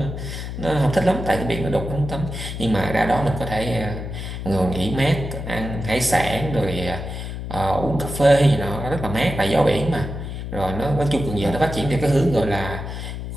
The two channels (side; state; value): left; noise; hum, 7 dB below the sound